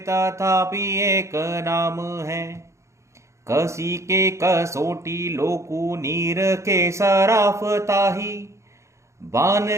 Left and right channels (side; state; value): left; late; 0.14 ms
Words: एक नाम है। कसी के कसोटी लोकु नीर के सराफ ताही, बान